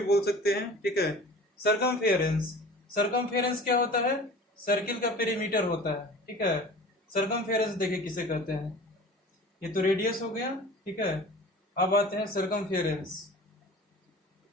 बोल सकते हैं, ठीक है। सरकमफेरेंस, सरकमफेरेंस क्या होता है, सर्किल का पेरीमीटर होता है, ठीक है। सरकमफेरेंस देखिए किसे कहते हैं, ये तो रेडियस हो गया, ठीक है। अब आते हैं सरकमफेरेंस।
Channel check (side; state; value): both; normal; correlation 0.41